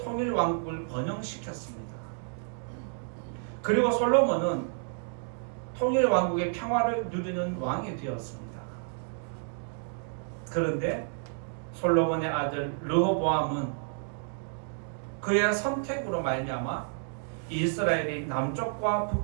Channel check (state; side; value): silent; left; 58 dB below the other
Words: 번영시켰습니다. 그리고 솔로몬은 통일왕국의 평화를 누리는 왕이 되었습니다. 그런데 솔로몬의 아들 르호보암은 그의 선택으로 말미암아 이스라엘이 남쪽과